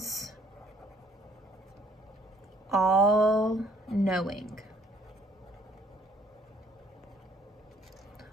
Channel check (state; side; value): normal; both; correlation 0.62